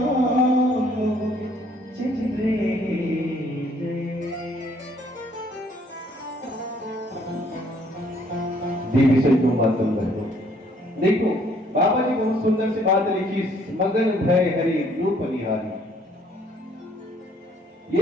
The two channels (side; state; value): both; normal; correlation 0.63